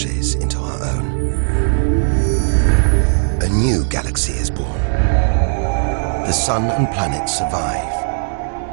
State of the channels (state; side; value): silent; left; 66 dB below the other